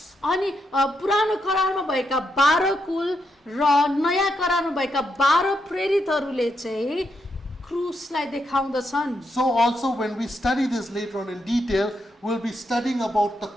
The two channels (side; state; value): both; normal; correlation 0.81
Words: अनि पुरानो करारमा भएका 12 कुल र नयाँ करारमा भएका 12 प्रेरितहरूले चाहिँ क्रुसलाई देखाउँदछन्। So also when we study this later on in detail, we'll be studying about the